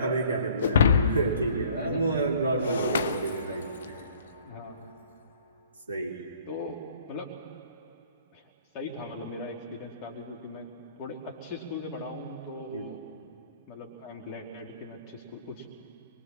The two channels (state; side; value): inverted; both; correlation -0.54